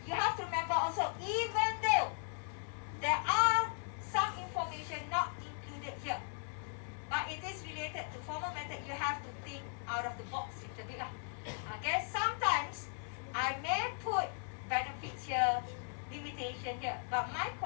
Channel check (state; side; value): silent; right; 53 dB below the other